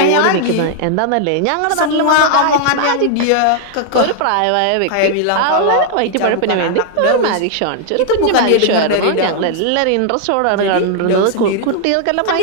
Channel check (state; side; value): different; both; correlation 0.00